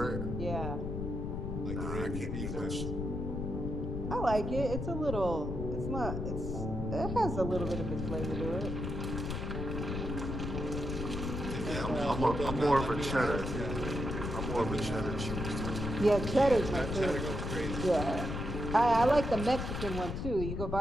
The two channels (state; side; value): noise; left; rumble, 3 dB below the sound